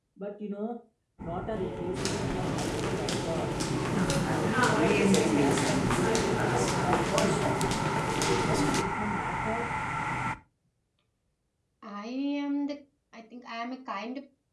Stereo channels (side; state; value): both; identical; correlation 1.00